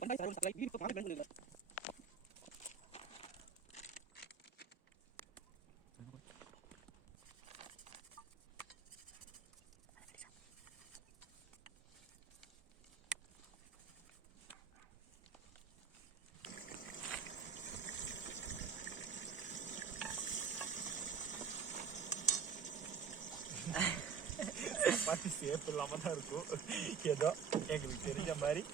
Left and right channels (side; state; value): left; quieter; 6.4 dB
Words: சப்பாத்தி சேஃப் இல்லாம தான் இருக்கும். ஏதோ எங்களுக்கு தெரிஞ்ச மாதிரி